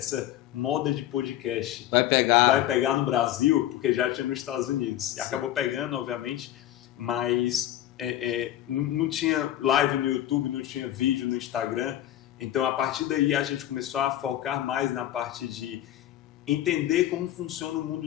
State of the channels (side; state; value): right; quieter; 13.0 dB